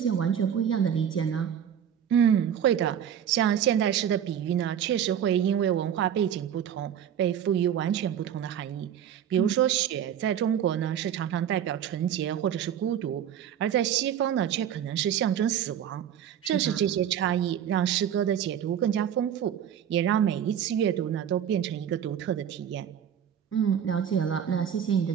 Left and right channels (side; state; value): left; quieter; 9.3 dB